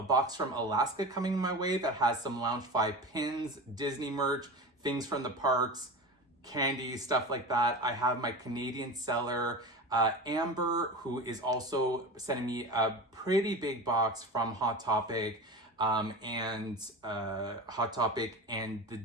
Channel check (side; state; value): both; normal; correlation 0.29